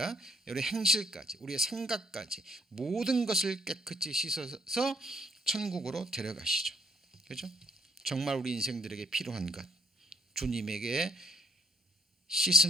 우리 행실까지, 우리의 생각까지 모든 것을 깨끗이 씻어서 천국으로 데려가시죠. 그죠? 정말 우리 인생들에게 필요한 것, 주님에게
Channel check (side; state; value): both; normal; correlation 0.70